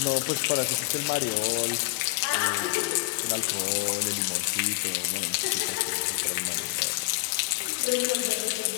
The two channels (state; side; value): quieter; right; 23.1 dB